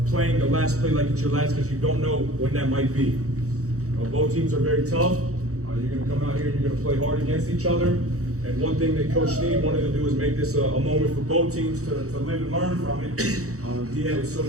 playing the last play like it's your last, because you don't know when that might be. Both teams are very tough. You're going to come out here and you're going to play hard against each other. And one thing that Coach Sneed wanted to do is make this a moment for both teams to live and learn from it. He was so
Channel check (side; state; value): left; late; 0.65 ms